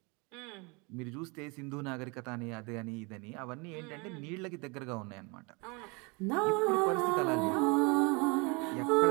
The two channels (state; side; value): quieter; left; 29.2 dB